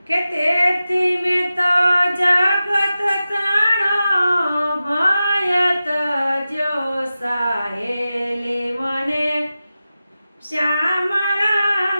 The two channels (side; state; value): both; inverted; correlation -0.93